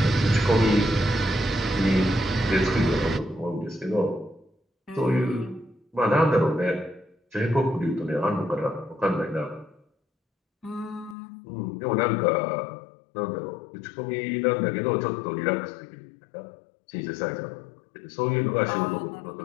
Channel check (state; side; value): drops out; right; at 11.2 s